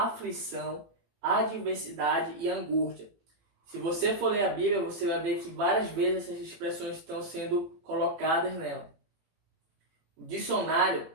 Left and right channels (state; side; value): late; left; 18 ms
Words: adversidade e angústia. Se você for ler a Bíblia, você vai ver que várias vezes essas expressões estão sendo colocadas nela. O dicionário